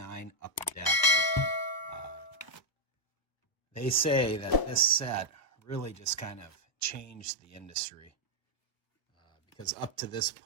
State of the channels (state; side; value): late; right; 1.0 ms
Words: Upper Deck. They say that this set really just kind of changed the industry because up to this